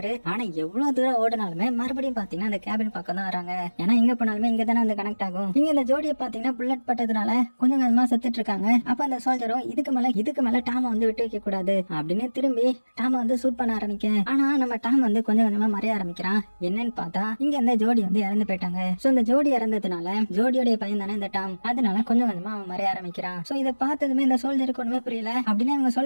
ஆனா எவ்வளவு தூரம் ஓடினாலுமே மறுபடியும் பாத்தீங்கன்னா அந்த கேபின் பக்கம் தான் வராங்க. ஏன்னா இங்க போனாலுமே இங்க தானே வந்து கனெக்ட் ஆகும். இங்க இந்த ஜோடியை பாத்தீங்கன்னா புல்லட் பட்டதுனால கொஞ்சம் கொஞ்சமா செத்துட்டு இருக்காங்க. அப்ப அந்த சோல்ஜரும் இதுக்கு மேல டாம வந்து விட்டு வைக்க கூடாது அப்படின்னு திரும்பி டாம வந்து சூட் பண்ண ஆரம்பிக்க, ஆனா நம்ம டாம் வந்து கொஞ்சம் கொஞ்சமா மறைய ஆரம்பிக்கிறான். என்னன்னு பார்த்தா இங்க இந்த ஜோடி வந்து இறந்து போயிட்டாங்க. சோ இந்த ஜோடி இறந்ததுனால ஜோடியோட பையன் தானே இந்த டாம், அதனால கொஞ்சம் கொஞ்சமா அவன் மறைய ஆரம்பிக்கிறான். சோ இதை பார்த்ததுமே இந்த சோல்ஜருக்கு ஒண்ணுமே புரியல. அப்படின்னு இவங்க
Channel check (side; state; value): both; inverted; correlation -1.00